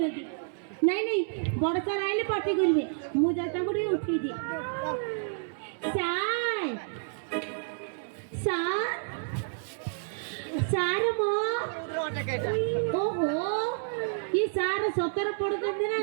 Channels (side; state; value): left; silent; 58 dB below the other